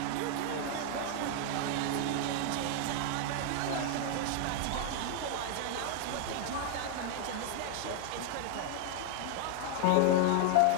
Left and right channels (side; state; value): both; different; correlation 0.00